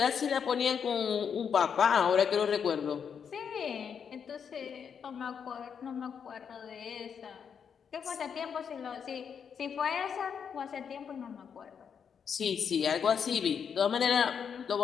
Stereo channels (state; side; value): quieter; right; 7.1 dB